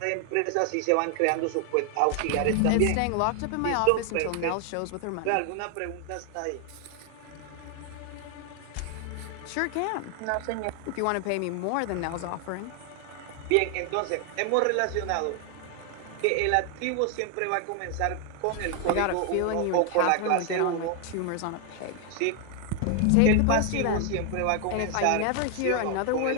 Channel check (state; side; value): different; both; correlation 0.00